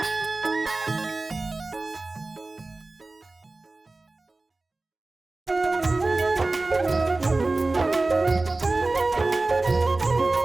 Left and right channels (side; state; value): left; quieter; 3.2 dB